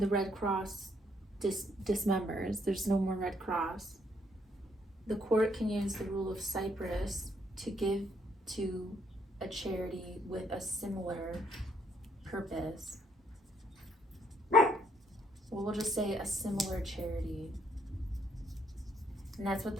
Red Cross dismembers. There's no more Red Cross. The court can use the rule of Cypress to give to a charity with a similar purpose. Well, we'll just say a similar charity. And that's what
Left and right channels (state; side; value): normal; both; correlation 0.70